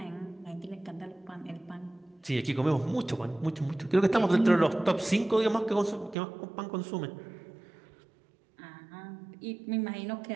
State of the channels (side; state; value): left; drops out; at 6.2 s